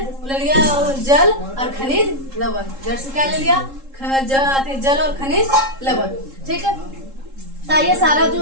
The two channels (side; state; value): left; late; 3.7 ms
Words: ले लिया जल और खनिज लवण, जड़ से क्या ले लिया, जल और खनिज लवण, ठीक है। तो ये सारा जो